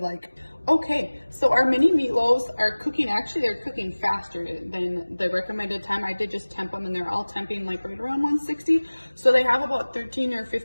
like. Okay, so our mini meatloaves are cooking, actually they're cooking faster than the recommended time. I did just temp them and they're all temping like right around 160. So they have about 13 or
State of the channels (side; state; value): both; inverted; correlation -1.00